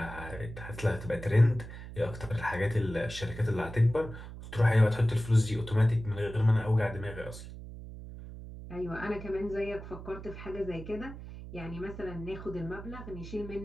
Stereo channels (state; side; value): noise; right; hum, 12 dB below the sound